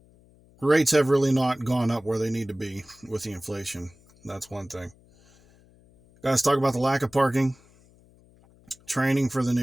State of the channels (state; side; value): noise; left; hum, 29 dB below the sound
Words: Rates have really not gone up where they need to be with the inflation. That's one thing. Guys, talk about the lack of parking, training for the